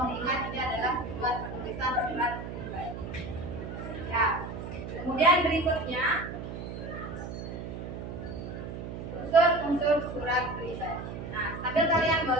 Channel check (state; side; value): noise; right; hum, 8 dB below the sound